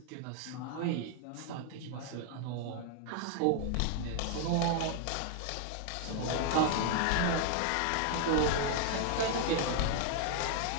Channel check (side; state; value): both; different; correlation 0.00